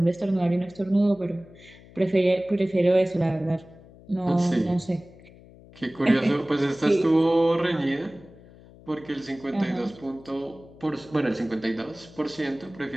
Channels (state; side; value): noise; left; hum, 22 dB below the sound